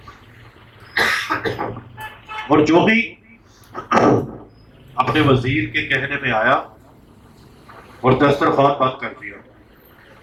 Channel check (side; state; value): both; identical; correlation 1.00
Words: اور جو بھی اپنے وزیر کے کہنے میں آیا اور دسترخوان بند کر دیا،